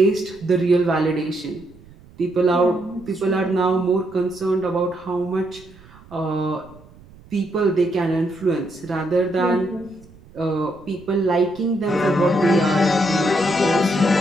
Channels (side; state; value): right; noise; rumble, 24 dB below the sound